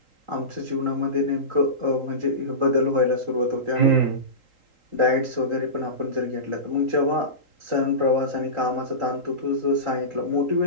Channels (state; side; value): late; left; 3.8 ms